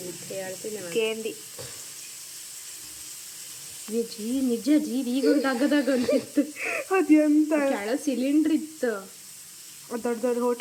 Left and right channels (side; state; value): both; identical; correlation 1.00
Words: ಹೇಳ್ತೀನಿ ಕೇಂಡಿ ಜೀ ನಿಜ ಜೀ ಈಗ ತಗದಾಗ ಅಂತಿತ್ತು. ಅದು ಎಂತ ಕೆಳ ಸಿಲಿಂಡ್ರ್ ಇತ್ತು ದೊಡ್ಡ ದೊಡ್ಡ